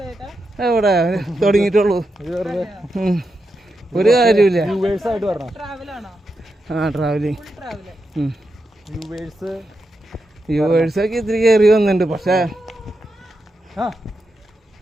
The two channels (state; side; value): normal; both; correlation 0.86